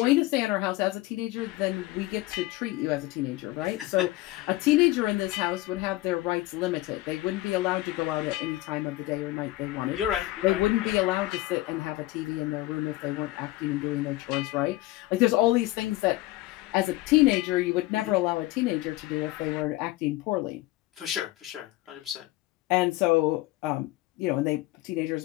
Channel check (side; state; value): right; quieter; 18.1 dB